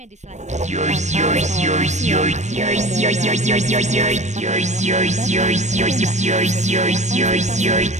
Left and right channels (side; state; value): left; late; 0.34 ms